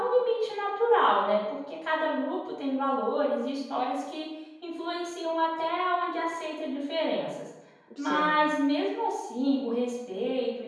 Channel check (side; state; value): both; identical; correlation 1.00